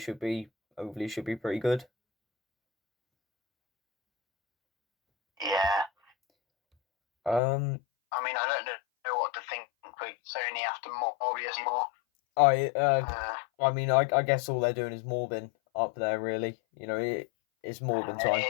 be pretty good. Yeah. I mean, I don't know what to think with Sony after Morbius more. I mean, I guess all they're doing is Morbin up there, really. It's Morbin time.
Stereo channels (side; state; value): right; drops out; at 7.4 s